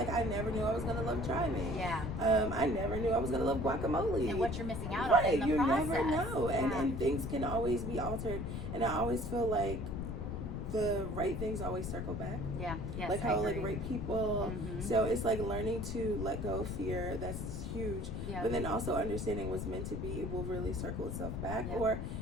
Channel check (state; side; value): noise; left; rumble, 4 dB below the sound